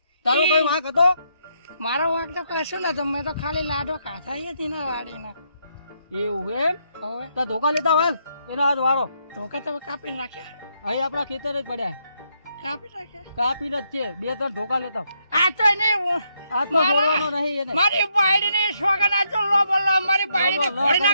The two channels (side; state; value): both; inverted; correlation -0.76